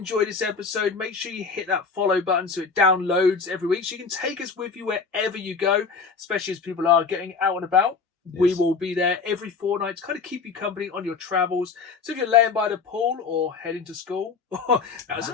this episode, make sure you hit that follow button so it downloads every week so you can take us with you wherever you go, especially as people are getting out and about. Yes. We will be there every fortnight to kind of keep you company on your travels. So if you're laying by the pool or heading to school, that was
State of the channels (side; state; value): right; quieter; 5.0 dB